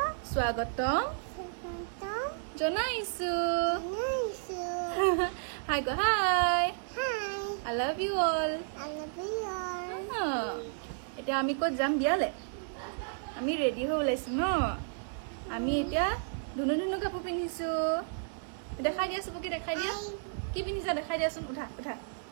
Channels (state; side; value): silent; left; digital silence